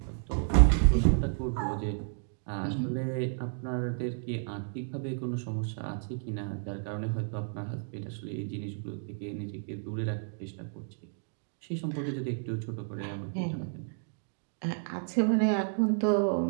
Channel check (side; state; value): left; silent; digital silence